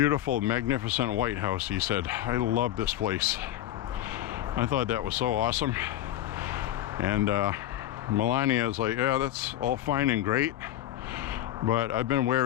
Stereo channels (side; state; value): right; quieter; 13.2 dB